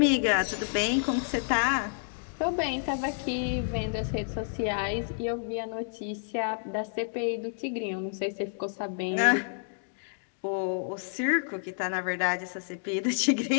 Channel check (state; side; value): silent; right; digital silence